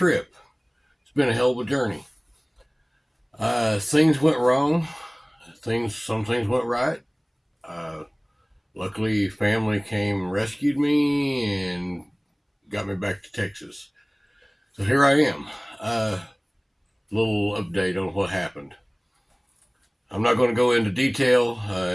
It's been a hell of a journey. Things went wrong. Some things went right. Uh, Luckily, family came and rescued me and got me back to Texas. So here I am. Little update on what happened. I'm not going to go into detail.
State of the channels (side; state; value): both; identical; correlation 1.00